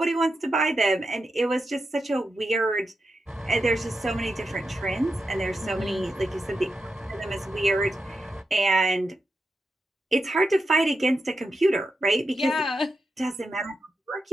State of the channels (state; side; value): normal; both; correlation 0.88